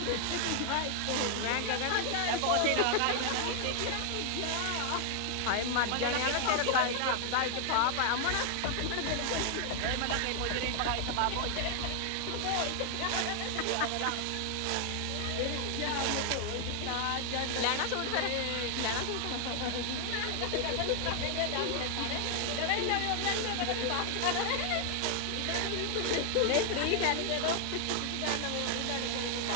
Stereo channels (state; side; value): different; both; correlation 0.00